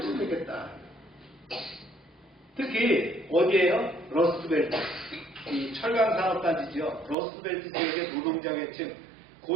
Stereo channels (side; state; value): left; drops out; at 7.2 s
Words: 찾겠다. 특히 어디에요? 러스트벨트. 이 철강산업단지죠. 러스트벨트 지역의 노동자 계층,